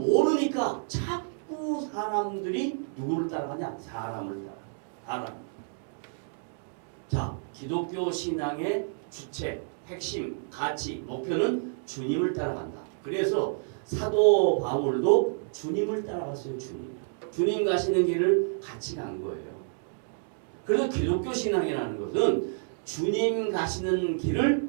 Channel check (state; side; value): silent; left; digital silence